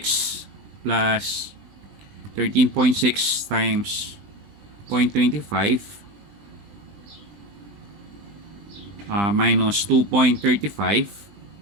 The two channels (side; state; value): left; late; 20 ms